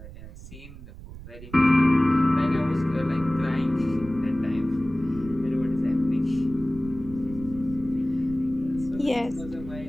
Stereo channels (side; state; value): right; noise; rumble, 15 dB below the sound